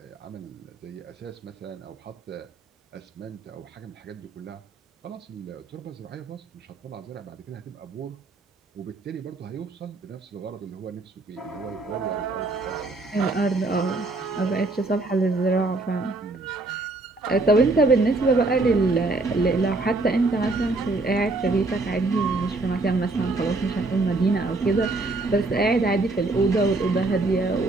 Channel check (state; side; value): quieter; left; 3.2 dB